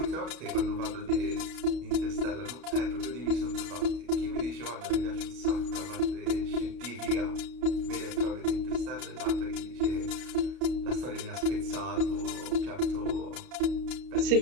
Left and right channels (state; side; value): late; left; 32 ms